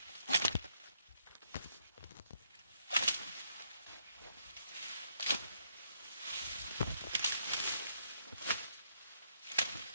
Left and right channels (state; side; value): inverted; both; correlation -0.72